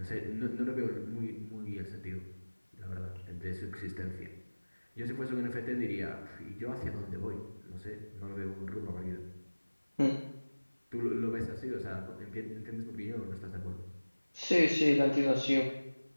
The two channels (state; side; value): inverted; both; correlation -1.00